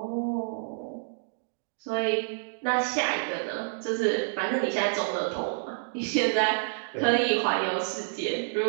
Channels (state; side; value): silent; left; digital silence